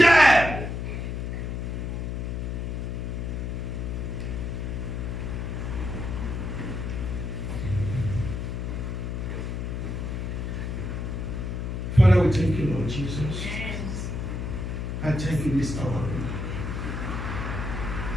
Father, we thank you, Lord Jesus. Yes. I thank you this hour.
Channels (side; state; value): left; noise; hum, 3 dB below the sound